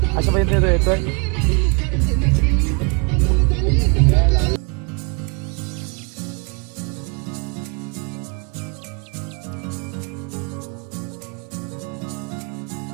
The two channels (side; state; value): left; quieter; 33.6 dB